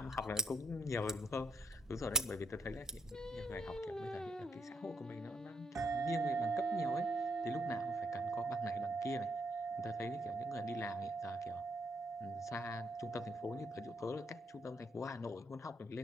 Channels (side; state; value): both; normal; correlation 0.73